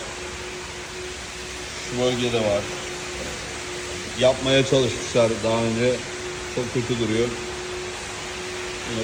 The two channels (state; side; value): identical; both; correlation 1.00